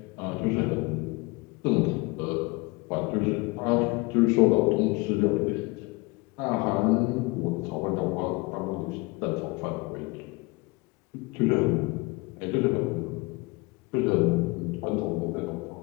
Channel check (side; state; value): right; quieter; 25.5 dB